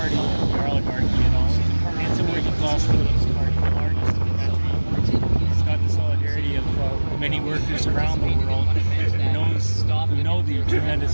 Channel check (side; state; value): both; inverted; correlation -1.00